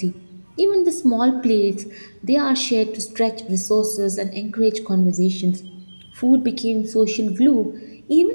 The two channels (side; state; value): both; inverted; correlation -1.00